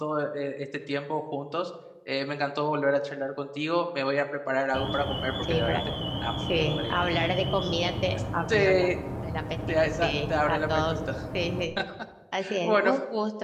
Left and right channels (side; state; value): both; identical; correlation 1.00